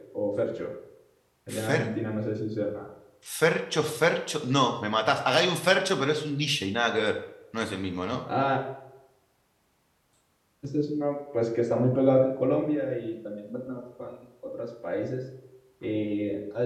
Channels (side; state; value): both; identical; correlation 1.00